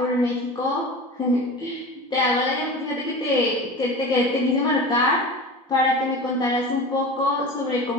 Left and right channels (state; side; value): normal; both; correlation 0.33